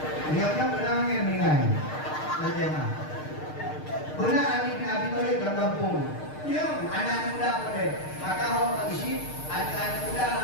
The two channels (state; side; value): late; right; 6.6 ms